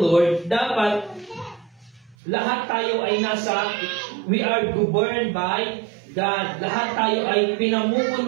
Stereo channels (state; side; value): drops out; left; at 2.1 s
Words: dapat lahat tayo ay we are governed by God. Lahat tayo ay